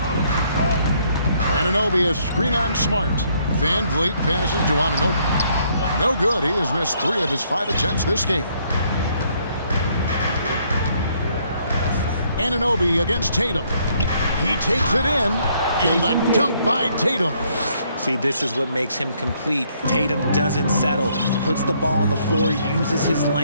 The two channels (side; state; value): both; inverted; correlation -0.68